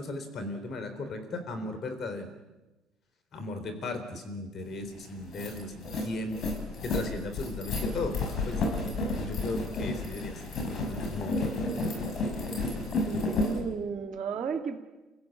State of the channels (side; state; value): both; normal; correlation 0.54